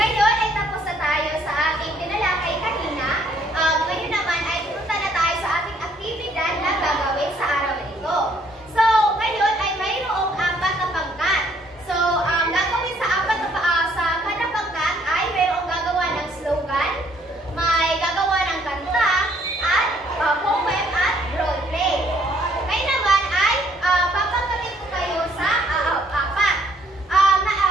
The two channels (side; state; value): both; normal; correlation 0.65